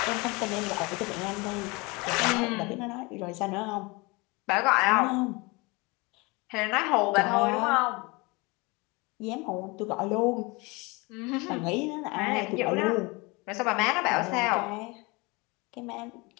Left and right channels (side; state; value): right; quieter; 26.1 dB